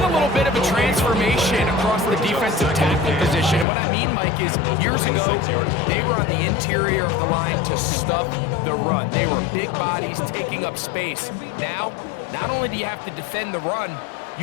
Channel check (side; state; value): right; drops out; at 3.7 s